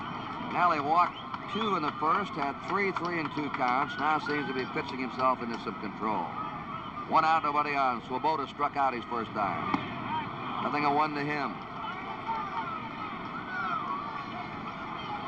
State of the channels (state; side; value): noise; left; rumble, 23 dB below the sound